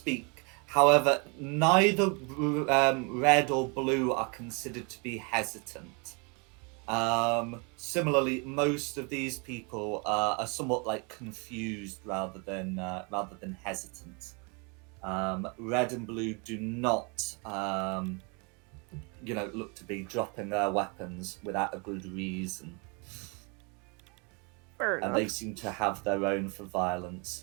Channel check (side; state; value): left; quieter; 32.7 dB